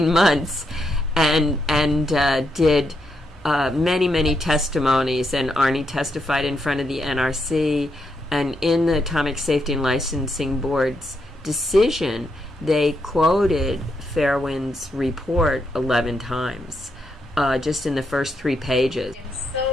months and did many testimonies, and Arnie testified in front of the NRC, and in the Atomic Safety and Licensing Board's decision, they quoted Fairwind's report 11 times, just in the first 3 pages. I'm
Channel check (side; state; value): both; normal; correlation 0.81